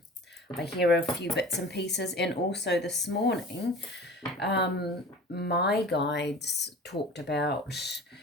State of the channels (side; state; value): both; normal; correlation 0.39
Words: hear a few bits and pieces. And also this morning, my guides talked about